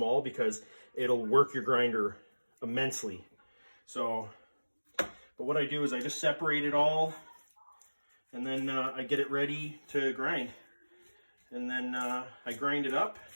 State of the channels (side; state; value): both; inverted; correlation -1.00